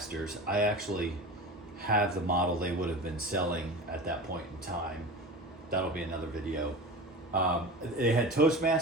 I actually have the model they would have been selling at that point in time. That'll be another video. They had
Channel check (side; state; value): both; normal; correlation 0.32